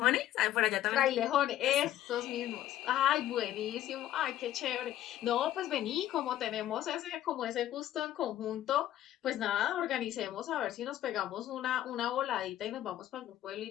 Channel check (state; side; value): quieter; right; 12.8 dB